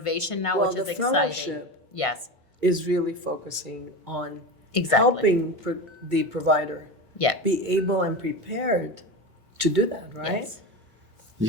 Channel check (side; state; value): both; normal; correlation 0.24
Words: now, which is exciting. Fellowship Yes. is really focusing on Exactly. helping the provider Yeah. be able and prepared to do that, right? Yes.